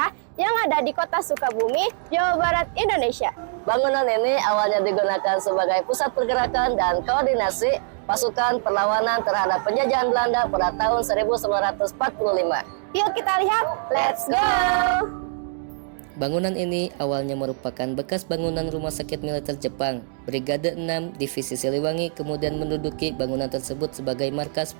yang ada di Kota Sukabumi, Jawa Barat, Indonesia. Bangunan ini awalnya digunakan sebagai pusat pergerakan dan koordinasi pasukan perlawanan terhadap penjajahan Belanda pada tahun 1945. Yuk kita lihat, let's go! Bangunan ini awalnya merupakan bekas bangunan rumah sakit militer Jepang. Brigade 6 Divisi Siliwangi kemudian menduduki bangunan tersebut sebagai markas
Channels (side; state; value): left; silent; 63 dB below the other